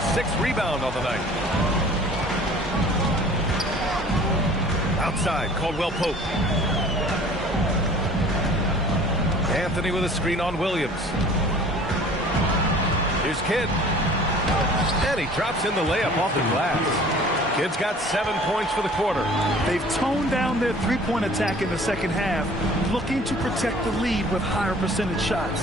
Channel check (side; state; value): both; normal; correlation 0.48